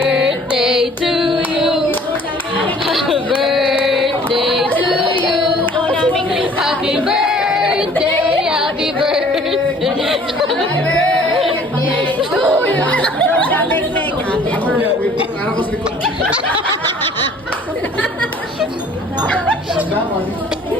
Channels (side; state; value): both; normal; correlation 0.53